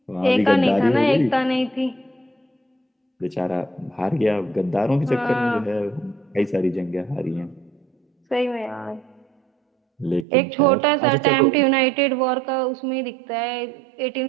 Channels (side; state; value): left; drops out; at 10.2 s